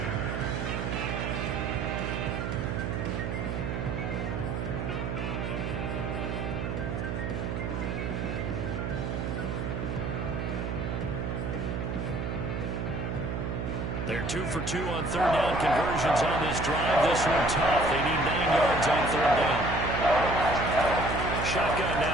They're 2 for 2 on third down conversions on this drive. This one tough. They need 9 yards on third down. Shotgun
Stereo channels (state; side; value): noise; right; hum, 2 dB below the sound